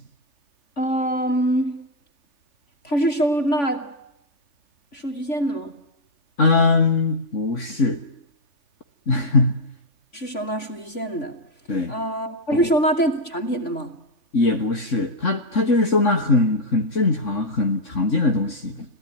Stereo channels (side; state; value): right; late; 3.5 ms